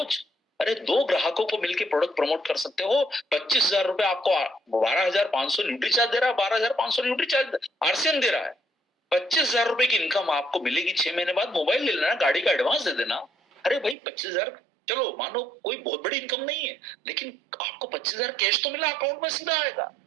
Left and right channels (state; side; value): drops out; left; at 14.0 s